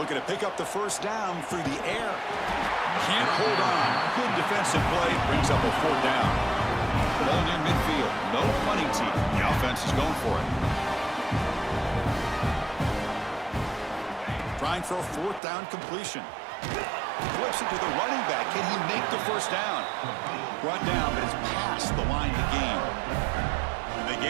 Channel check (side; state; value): left; drops out; at 15.4 s